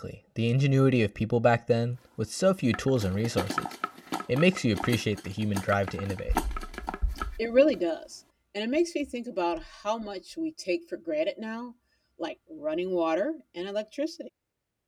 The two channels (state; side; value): identical; both; correlation 1.00